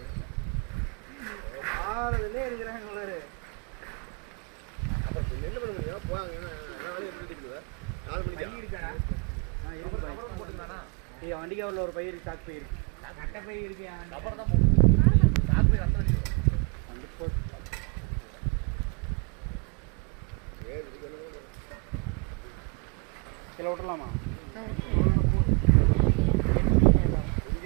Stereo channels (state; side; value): quieter; left; 33.8 dB